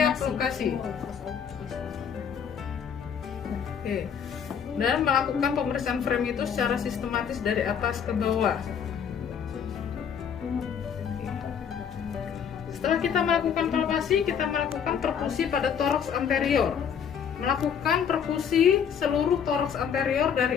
lokasi. Oke. Dan melakukan pemeriksaan frame itu secara sistematis dari atas ke bawah. Setelah kita melakukan palpasi, kita melakukan perkusi pada toraks anterior. Melakukan perkusi seluruh toraks anterior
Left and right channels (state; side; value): quieter; right; 7.6 dB